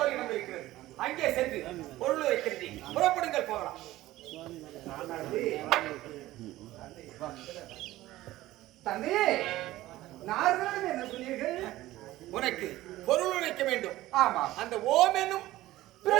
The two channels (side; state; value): left; quieter; 16.2 dB